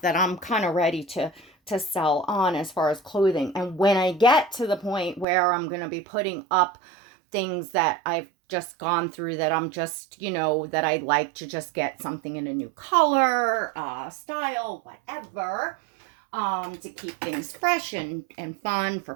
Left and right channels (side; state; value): left; drops out; at 5.2 s